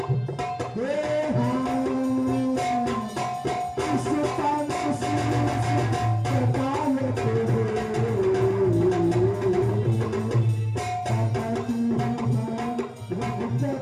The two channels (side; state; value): both; identical; correlation 1.00